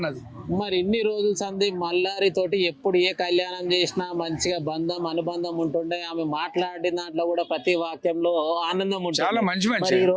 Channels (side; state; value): both; identical; correlation 1.00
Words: మరి ఇన్ని రోజుల సంది మల్లారి తోటి ఎప్పుడు ఏ కళ్యాణం చేసినా మంచిగా అనుబంధం ఉంటుండే. ఆమె మాట్లాడిన దాంట్లో కూడా ప్రతి వాక్యంలో ఆనందం ఉంటుంది. చాలా మంచి ఈ